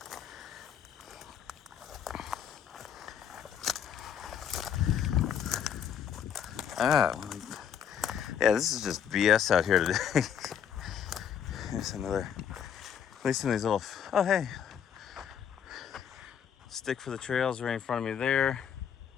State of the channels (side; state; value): right; quieter; 8.5 dB